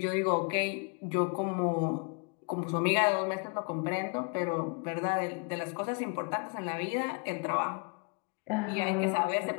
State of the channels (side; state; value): right; quieter; 35.3 dB